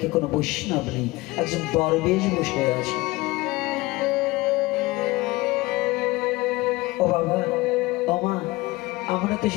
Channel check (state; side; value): quieter; right; 21.0 dB